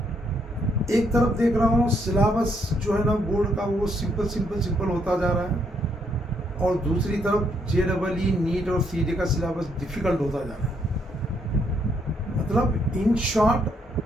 एक तरफ देख रहा हूँ सिलेबस जो है ना बोर्ड का वो सिंपल होता जा रहा है, और दूसरी तरफ जेडब्ल्यू, नीट और सीईटी का सिलेबस डिफ़िकल्ट होता जा रहा है। मतलब इन शॉर्ट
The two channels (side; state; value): both; normal; correlation 0.73